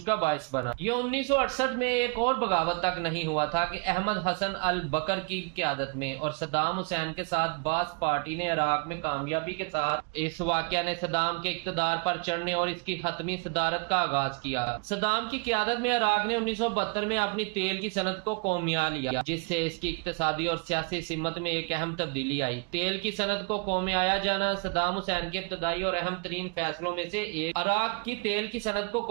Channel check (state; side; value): quieter; left; 33.7 dB